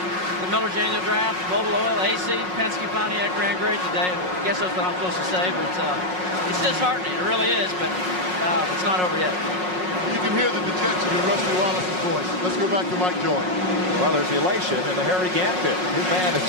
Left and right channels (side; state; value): left; late; 5.5 ms